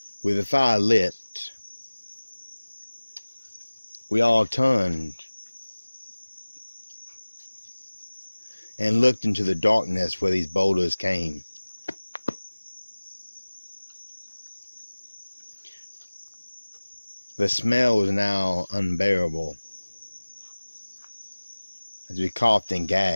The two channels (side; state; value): both; inverted; correlation -1.00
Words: With the fire lit, we all turned and looked into the darkness where these boulders came. The smell was now unbearable as we coughed and